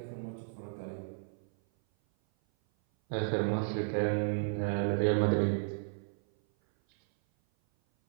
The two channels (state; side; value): silent; left; 56 dB below the other